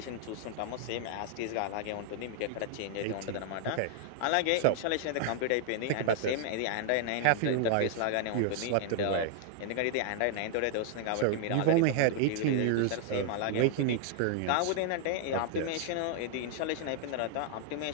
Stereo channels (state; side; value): different; both; correlation 0.00